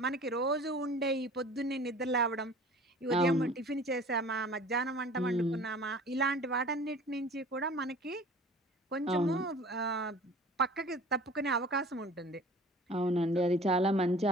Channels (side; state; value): both; normal; correlation 0.45